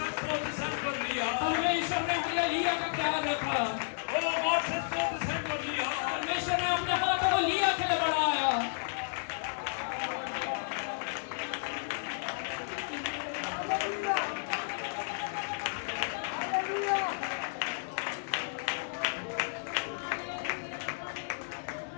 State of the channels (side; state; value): right; silent; digital silence